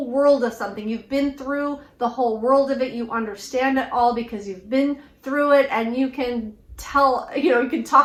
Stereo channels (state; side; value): identical; both; correlation 1.00